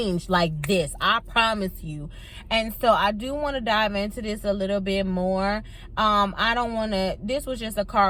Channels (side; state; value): both; identical; correlation 1.00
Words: like this. I promise you. And so I do want to dive into this a little bit more. I don't want to, this was just a